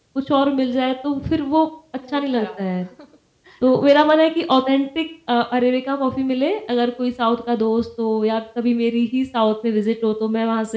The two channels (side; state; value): both; identical; correlation 1.00